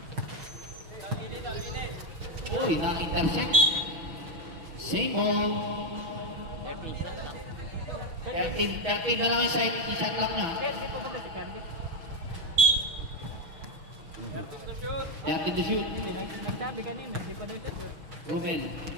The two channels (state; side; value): late; left; 6.1 ms